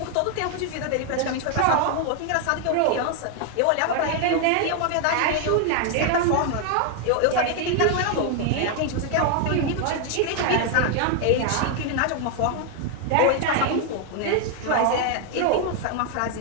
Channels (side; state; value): both; different; correlation 0.00